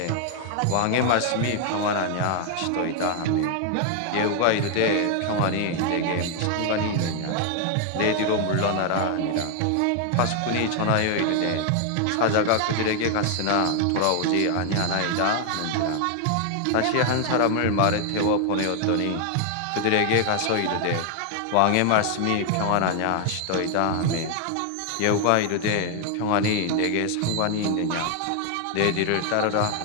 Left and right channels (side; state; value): both; different; correlation 0.00